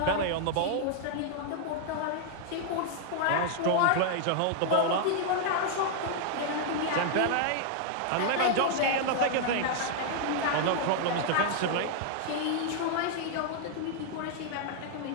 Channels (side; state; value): both; different; correlation 0.00